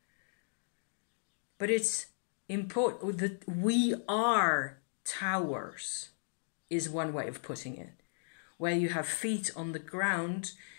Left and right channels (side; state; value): right; silent; digital silence